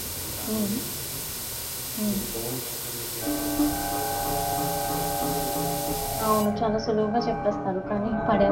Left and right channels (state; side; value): identical; both; correlation 1.00